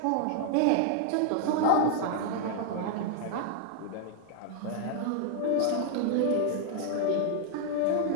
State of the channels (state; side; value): different; both; correlation 0.00